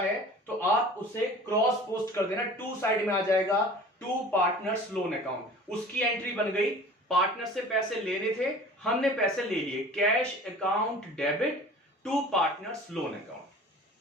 तो आप उसे क्रॉस पोस्ट कर देना, टू साइड में आ जाएगा, टू पार्टनर्स लोन अकाउंट, उसकी एंट्री बन गई, पार्टनर से पैसे लेने थे, हमने पैसे ले लिए, cash account debit to partners loan account.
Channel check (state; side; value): normal; both; correlation 0.43